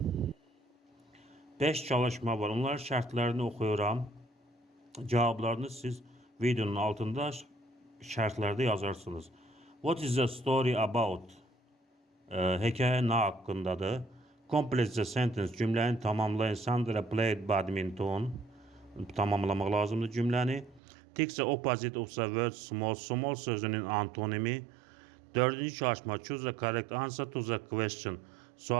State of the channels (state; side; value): drops out; left; at 20.8 s